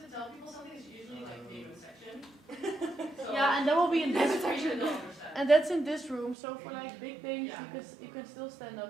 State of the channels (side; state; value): left; drops out; at 6.4 s